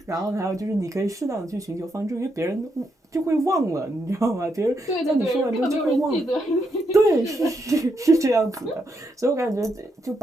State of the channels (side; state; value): both; normal; correlation 0.80